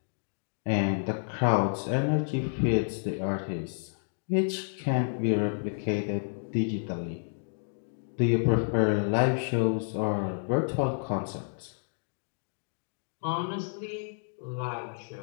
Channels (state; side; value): silent; right; digital silence